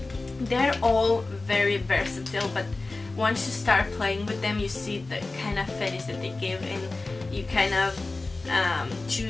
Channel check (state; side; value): quieter; right; 3.4 dB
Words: they're all very versatile, but once you start playing with them, you see the kind of finish that they give, and you kind of